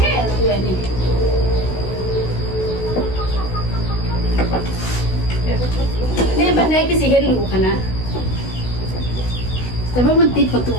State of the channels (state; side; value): late; right; 16 ms